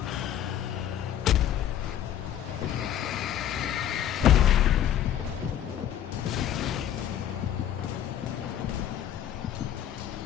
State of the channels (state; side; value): quieter; right; 10.6 dB